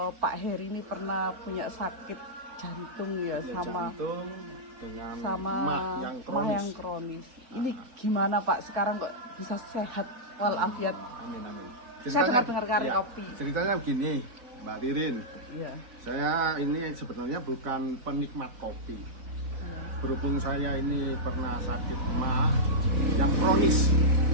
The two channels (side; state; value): left; late; 4.3 ms